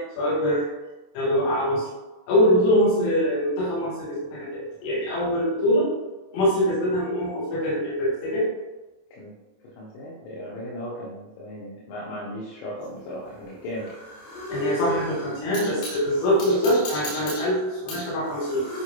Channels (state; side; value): late; right; 27 ms